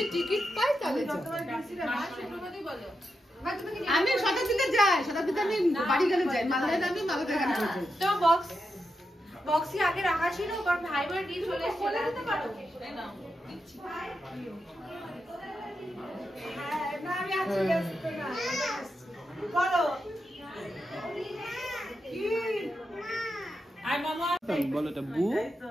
টিকিট পাই তাহলে আমি শতাব্দীতে যাই, শতাব্দীতে আমি বাড়ি গেলে যাই, মালদায় আমি মালদায় গাড়ি করে যাই। তো বক্স কি আগে রাখা ছিল কারণ ভাই বোন দিয়ে চলে এসে বলে দিতে পারো না আমি আছি না বলো কি আই মামা বলো এটা বু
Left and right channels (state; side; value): normal; both; correlation 0.87